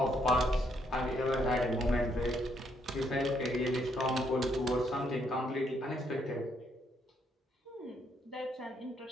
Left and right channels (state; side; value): normal; both; correlation 0.73